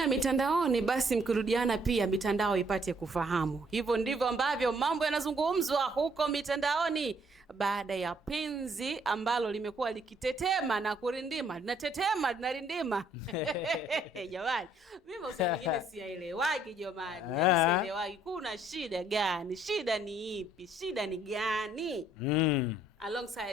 mitandaoni basi mkirudiana pia mitandao ipate kufahamu. Hivyo ndivyo ambavyo mambo yanazungumzwa huko mitandaoni baada ya penzi ambalo limekuwa likitetema na kurindima. Linatetema, linarindima. Jamani, mimi usema wengine siyaelewagi jamani. Yaani sielewagi kuna shida gani? Shida ni ipi? Shida ni gani?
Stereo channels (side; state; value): both; normal; correlation 0.66